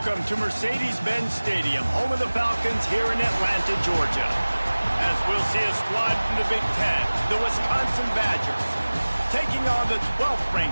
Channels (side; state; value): both; inverted; correlation -1.00